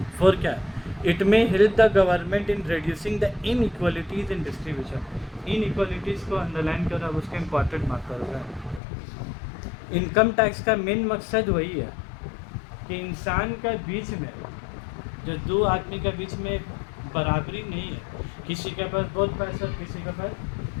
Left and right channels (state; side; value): drops out; right; at 8.8 s